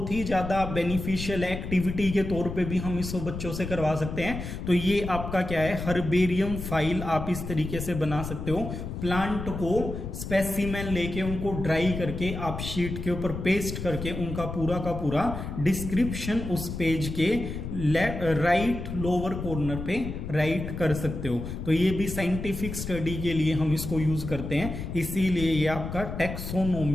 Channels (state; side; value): noise; left; rumble, 7 dB below the sound